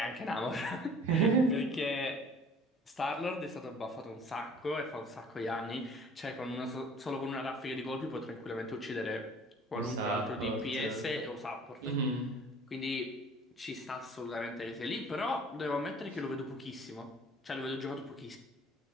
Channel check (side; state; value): both; normal; correlation 0.50